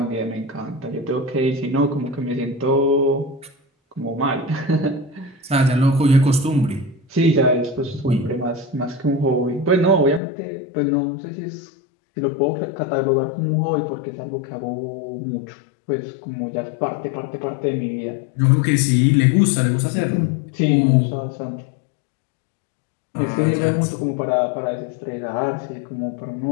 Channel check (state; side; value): drops out; right; at 10.2 s